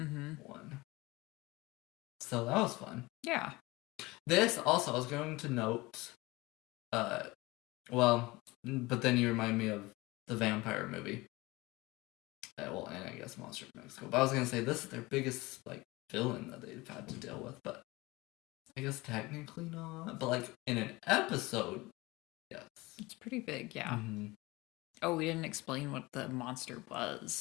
So that was fun. Yeah. This also, I was going to note, but then you remind me of the vampire movie. And I guess Monster of Mexico. But I was going to say, this is their biggest, like, villain that they've had to deal with, but I guess technically not. But, like, in an episode, yes. It's pretty big, yeah. Mm-hmm. Oh, we didn't explain what the monster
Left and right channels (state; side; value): quieter; right; 21.8 dB